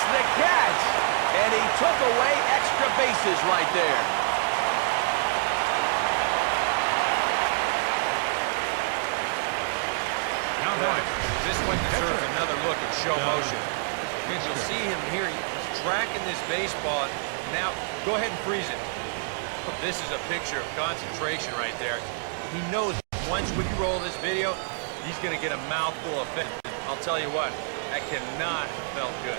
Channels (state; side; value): silent; left; digital silence